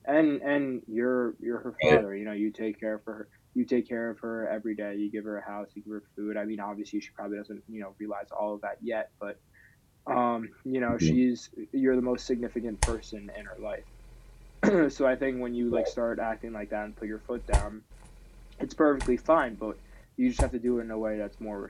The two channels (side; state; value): both; identical; correlation 1.00